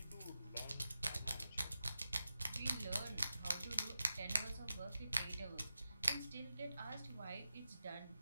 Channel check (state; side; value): inverted; both; correlation -0.92